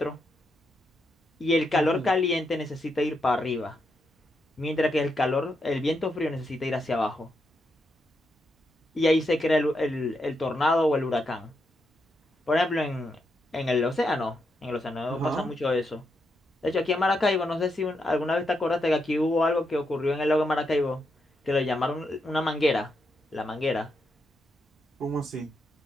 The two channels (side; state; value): both; normal; correlation 0.82